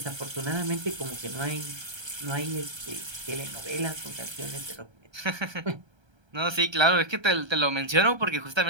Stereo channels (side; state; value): left; late; 1.3 ms